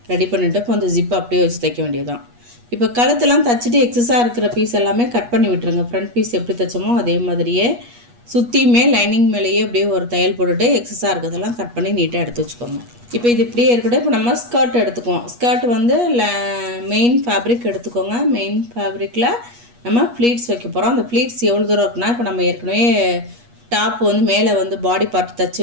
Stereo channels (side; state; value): left; late; 8.3 ms